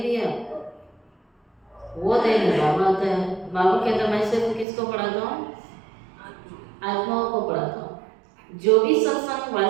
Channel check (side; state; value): left; drops out; at 4.7 s